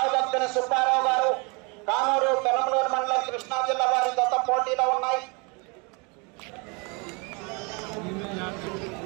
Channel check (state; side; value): quieter; left; 30.9 dB